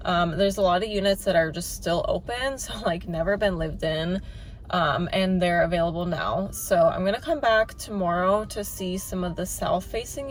there's a lot of units that are just still open, so like never been lived in. and they're available now. So I'm gonna come back tomorrow to see some of the south facing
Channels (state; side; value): identical; both; correlation 1.00